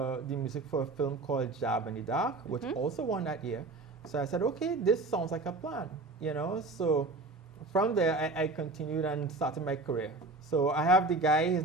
music for a film called Jab in the Dark, which also won that year. So I said, okay, this sounds like a plan, So from there, I continued and started my career. So I have the guy, his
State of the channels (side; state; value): left; quieter; 3.3 dB